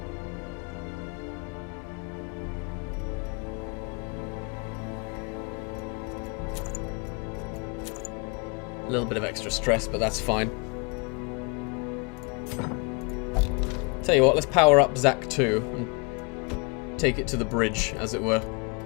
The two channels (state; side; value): quieter; right; 31.6 dB